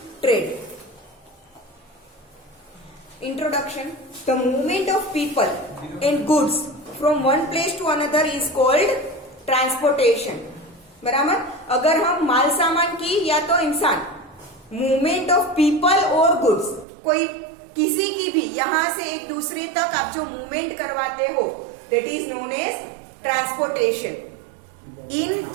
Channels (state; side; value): drops out; left; at 16.9 s